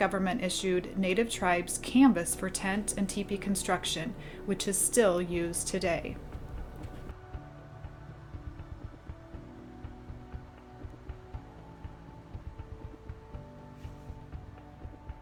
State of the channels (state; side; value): identical; both; correlation 1.00